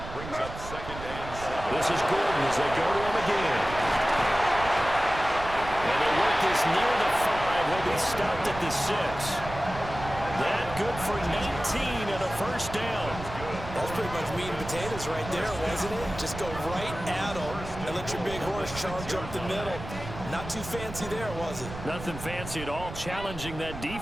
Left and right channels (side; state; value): right; noise; rumble, 11 dB below the sound